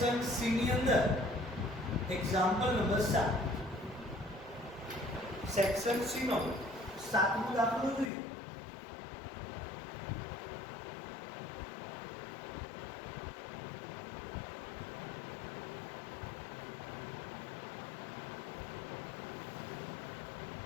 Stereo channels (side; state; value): right; drops out; at 8.1 s